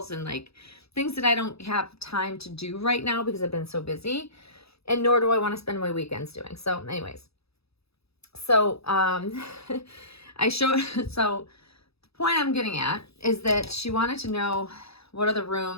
and like things that I don't have time to do right now because I've been so busy, and nor do I want to spend my weekends doing. So anyways, so, so the point I'm getting at is that she wanted to know what are the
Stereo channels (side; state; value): right; late; 0.78 ms